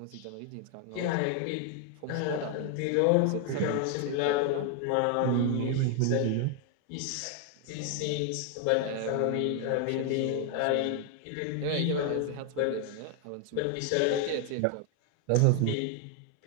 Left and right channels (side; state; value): both; different; correlation 0.00